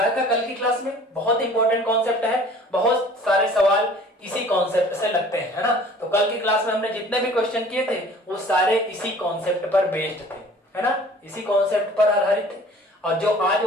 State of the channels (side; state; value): both; normal; correlation 0.49